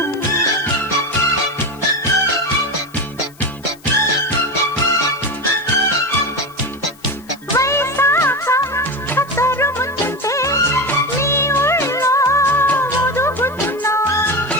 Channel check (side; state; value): left; noise; hiss, 26 dB below the sound